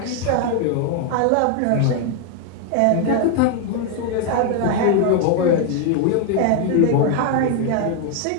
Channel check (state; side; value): different; both; correlation 0.00